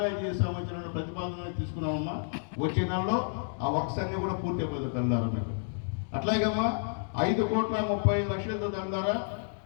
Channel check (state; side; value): silent; right; digital silence